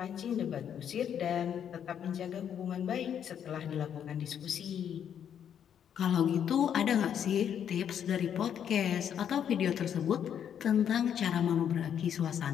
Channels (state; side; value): quieter; right; 8.9 dB